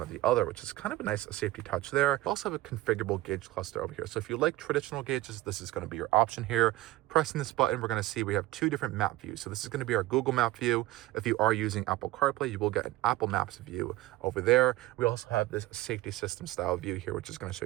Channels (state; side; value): quieter; left; 17.3 dB